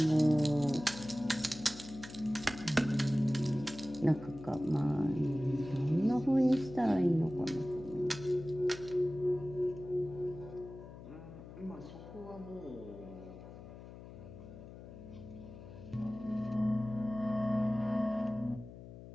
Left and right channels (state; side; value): noise; left; hum, 15 dB below the sound